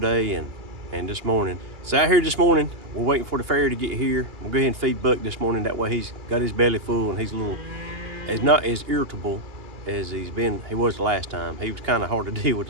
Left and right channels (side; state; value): left; late; 2.9 ms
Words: and this morning. So out here this morning, we're waiting for the ferry to get here. We'll go ahead and feed Buck this morning. That way he's got his belly full and he's not as irritable as he was the last time. He was kind of hard to deal with